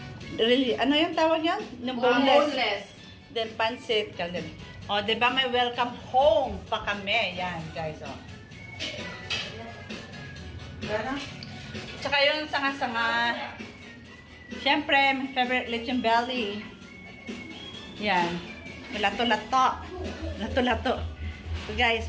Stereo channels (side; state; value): both; identical; correlation 1.00